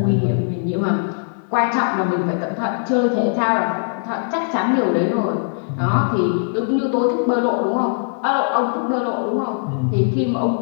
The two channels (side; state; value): right; silent; digital silence